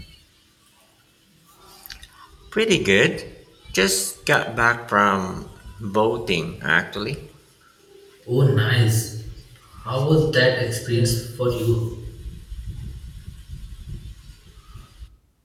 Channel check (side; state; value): both; identical; correlation 1.00